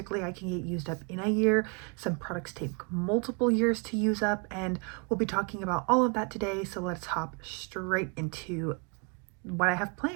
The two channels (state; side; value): quieter; left; 34.0 dB